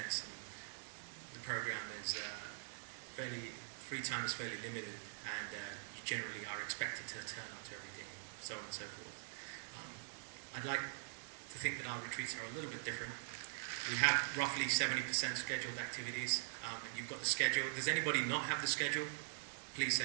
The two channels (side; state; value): left; silent; digital silence